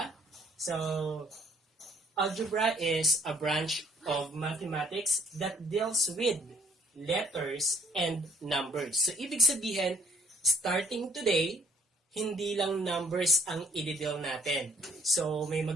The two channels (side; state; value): both; normal; correlation 0.61